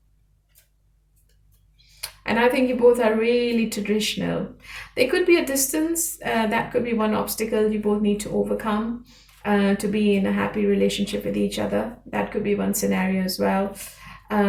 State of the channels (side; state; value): both; identical; correlation 1.00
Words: And I think you both are really traditional. There could be a distance. That could be one obstacle you both need to overcome to be in a happy relationship with each other. That could be one scenario as well.